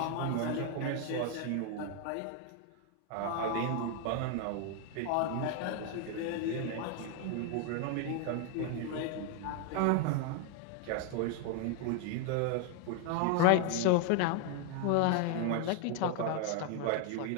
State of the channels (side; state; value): both; different; correlation 0.01